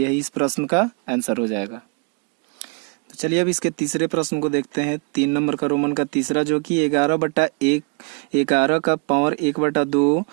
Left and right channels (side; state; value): left; quieter; 34.9 dB